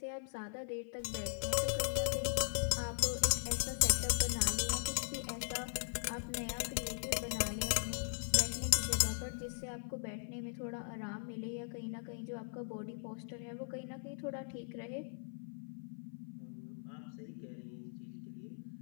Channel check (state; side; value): silent; right; 52 dB below the other